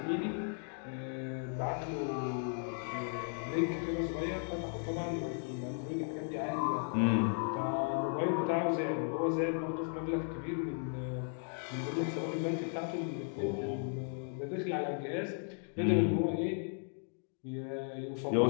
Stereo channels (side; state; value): right; silent; 54 dB below the other